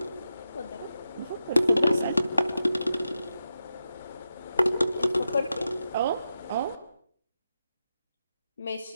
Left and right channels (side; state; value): both; inverted; correlation -0.89